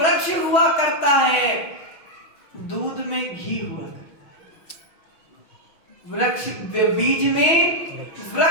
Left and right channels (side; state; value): right; late; 6.2 ms